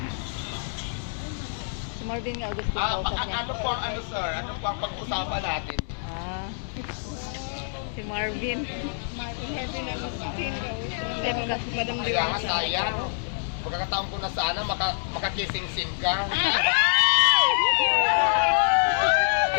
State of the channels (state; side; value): silent; right; 61 dB below the other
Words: Si Marvin Agustin kausap niya. Ano po ang ano sir? Ano po ang pag-usapan natin? Ah. Si Marvin. Marvin Agustin. Madam Kaya nga sayang. Pagkakataon ko na sana makakising-sing ka.